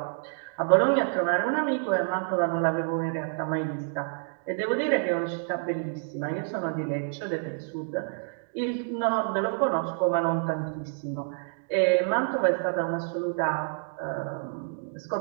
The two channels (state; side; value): silent; left; digital silence